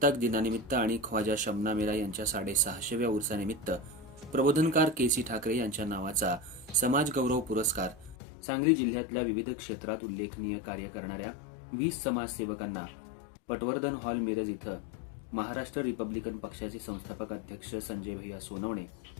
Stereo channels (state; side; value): drops out; right; at 8.2 s